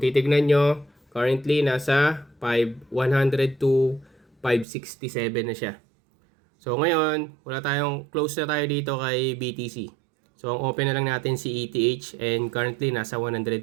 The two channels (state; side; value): drops out; left; at 4.7 s